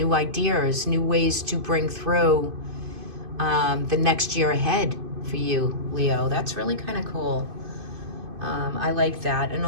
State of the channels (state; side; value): late; left; 2.5 ms